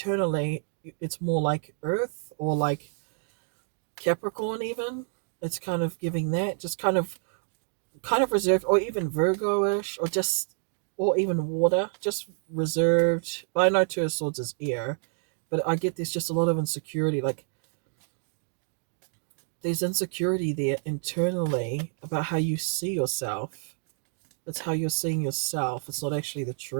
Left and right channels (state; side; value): silent; left; 59 dB below the other